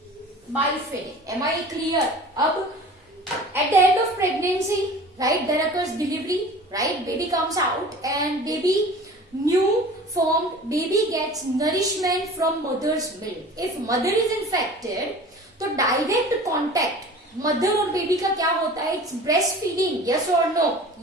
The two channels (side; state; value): both; normal; correlation 0.41